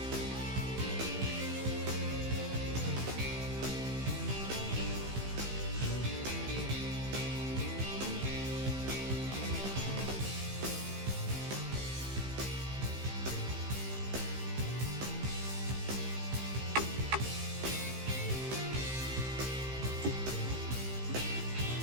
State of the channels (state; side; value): late; left; 15 ms